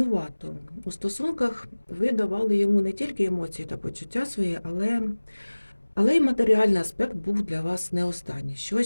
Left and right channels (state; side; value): inverted; both; correlation -1.00